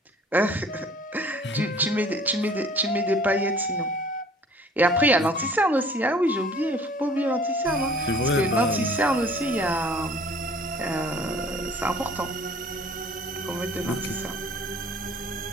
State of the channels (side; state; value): both; normal; correlation 0.52